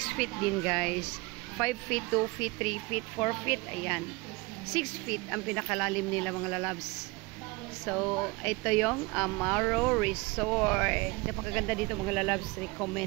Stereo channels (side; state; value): left; quieter; 24.7 dB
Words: feet din, guys. 5 feet, 2 feet, 3 feet, 4 feet, ayan. 6 feet ang pinakalalim nila, mga lalabs. So, ito yung Amaro Resort. Napakaganda dito, mga lalabs.